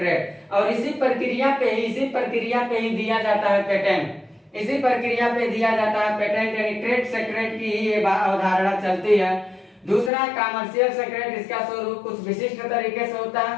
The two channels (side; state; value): right; drops out; at 10.1 s